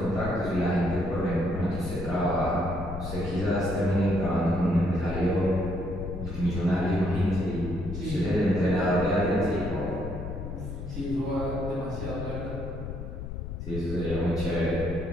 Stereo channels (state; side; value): noise; left; rumble, 7 dB below the sound